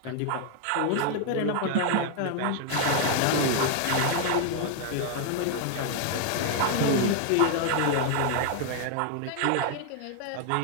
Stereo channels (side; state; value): both; different; correlation 0.00